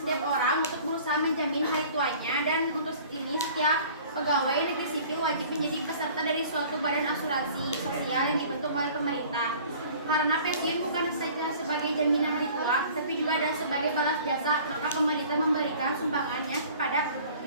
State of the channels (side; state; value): both; inverted; correlation -0.48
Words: orang untuk berusaha menjamin hari tuanya, dan untuk ini setiap pegawai negeri sipil wajib menjadi peserta dari suatu badan asuransi sosial yang dibentuk oleh pemerintah. Karena pensiun bukan saja sebagai jaminan hari tua, tapi juga ada sebagai balas jasa, maka pemerintah memberikan sumbangannya kepada